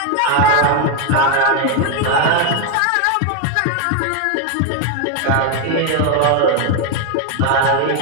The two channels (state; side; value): different; both; correlation 0.01